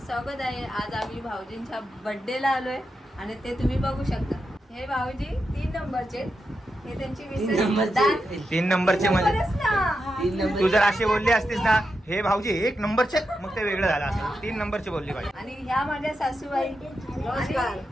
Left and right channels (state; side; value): normal; both; correlation 0.87